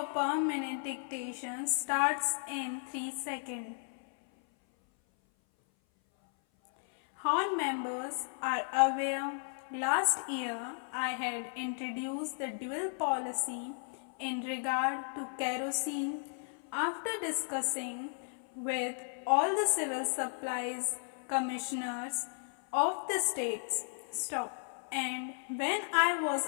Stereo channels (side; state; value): right; silent; 55 dB below the other